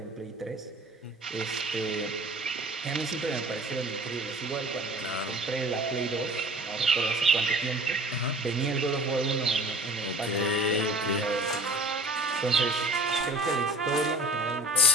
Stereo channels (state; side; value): normal; both; correlation 0.42